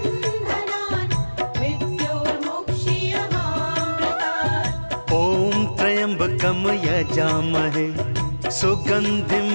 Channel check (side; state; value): both; inverted; correlation -1.00